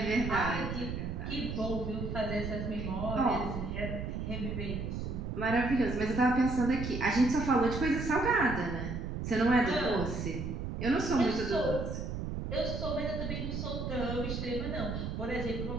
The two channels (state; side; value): noise; right; rumble, 4 dB below the sound